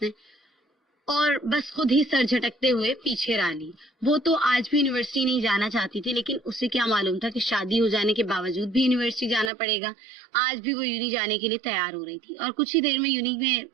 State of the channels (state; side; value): drops out; left; at 9.5 s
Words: نے, اور بس خود ہی سر جھٹکتے ہوئے پیچھے را لی. وہ تو آج بھی یونیورسٹی نہیں جانا چاہتی تھی لیکن اسے کیا معلوم تھا کہ شادی ہو جانے کے باوجود بھی یونیورسٹی جانا پڑے گا. آج بھی وہ یونی جانے کے لیے تیار ہو رہی تھی اور کچھ ہی دیر میں یونی میں